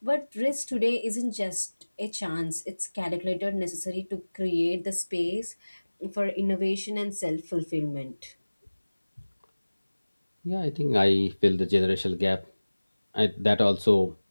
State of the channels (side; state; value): both; inverted; correlation -1.00